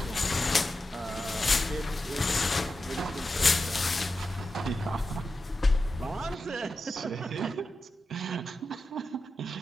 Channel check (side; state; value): both; normal; correlation 0.91